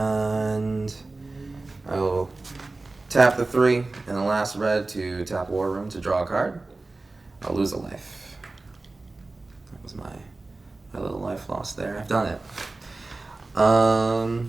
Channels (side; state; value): left; quieter; 3.3 dB